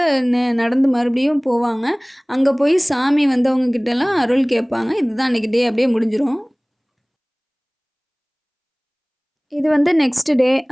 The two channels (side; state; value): both; identical; correlation 1.00